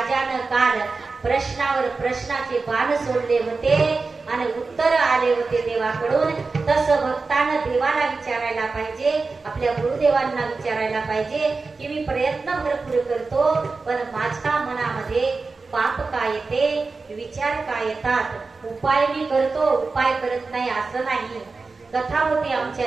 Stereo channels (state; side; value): quieter; left; 4.1 dB